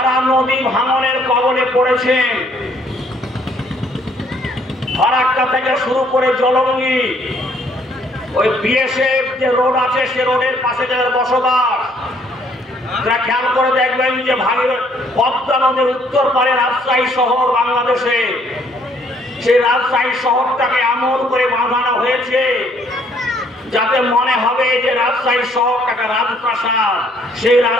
নদী ভাঙনের কবলে পড়েছেন, ফারাক্কা থেকে শুরু করে জলঙ্গি, ওই বিএসএফ যে রোড আছে সে রোডের পাশে যাদের বসবাস, তারা খেয়াল করে দেখবেন যে পদ্মা নদীর উত্তর পারে রাজশাহী শহর বাংলাদেশে, সেই রাজশাহী শহরটাকে এমন করে বাঁধানো হয়েছে যাতে মনে হবে যে রাজশাহী শহরটাকে রাজপ্রাসাদ, সেই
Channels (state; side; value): normal; both; correlation 0.64